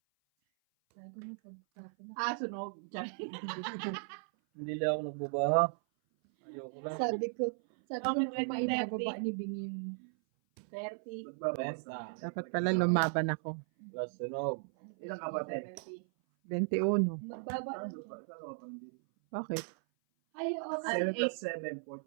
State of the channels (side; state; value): left; silent; 54 dB below the other